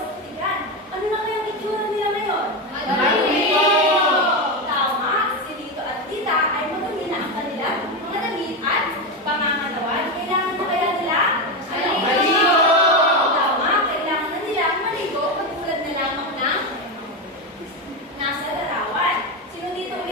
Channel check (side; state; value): both; normal; correlation 0.14